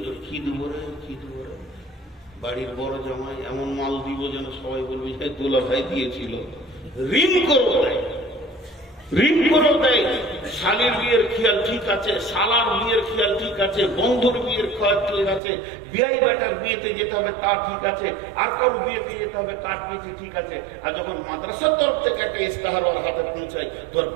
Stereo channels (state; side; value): drops out; left; at 15.4 s